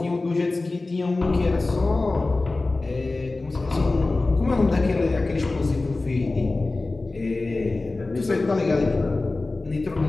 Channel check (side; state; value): right; quieter; 3.3 dB